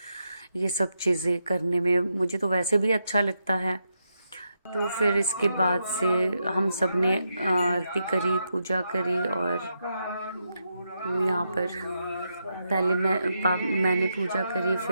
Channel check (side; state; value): both; inverted; correlation -0.83